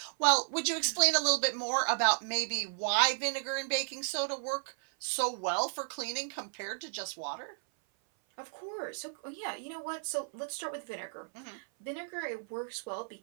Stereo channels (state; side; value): silent; left; 55 dB below the other